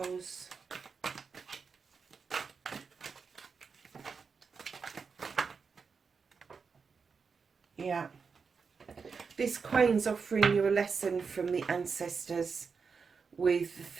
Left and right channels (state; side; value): quieter; left; 5.4 dB